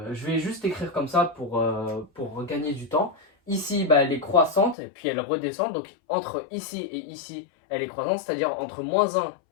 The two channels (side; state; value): right; drops out; at 4.8 s